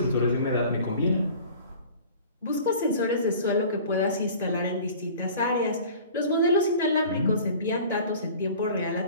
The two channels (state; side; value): inverted; both; correlation -0.44